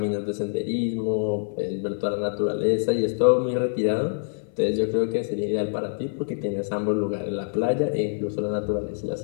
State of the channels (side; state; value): right; silent; 61 dB below the other